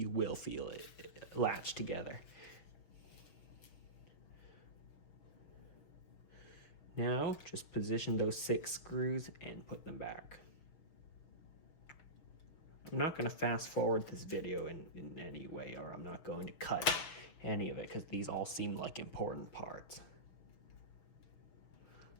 will feel it latch together. Now, just position those 6 screws and put them back. I'm not going to fast forward this video in any way, or I'm not going to cut any of it, because these all seem like important parts.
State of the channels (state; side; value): late; right; 6.2 ms